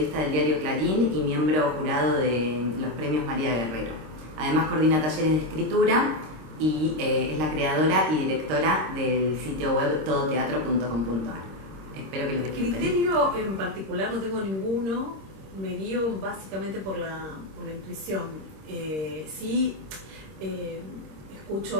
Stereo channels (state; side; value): late; left; 26 ms